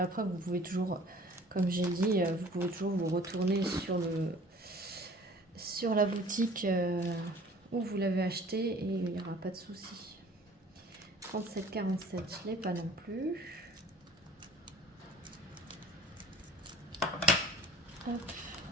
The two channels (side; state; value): both; normal; correlation 0.48